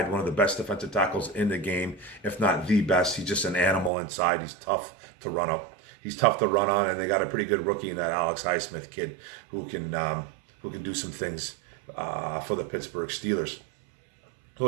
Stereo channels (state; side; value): drops out; left; at 3.9 s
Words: one of the best defensive tackles in the game, if not the best. He's just an animal inside. He's tough to run up. He's tough to run on, and they got a pretty good rookie in that Alex Highsmith kid who can do some things for the Pittsburgh Steelers. So